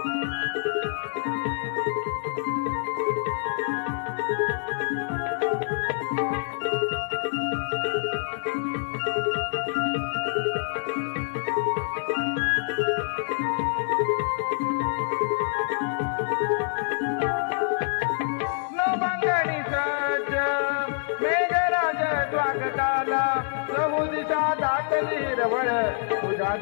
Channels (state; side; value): silent; right; digital silence